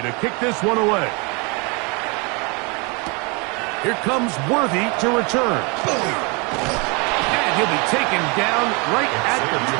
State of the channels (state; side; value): quieter; left; 30.4 dB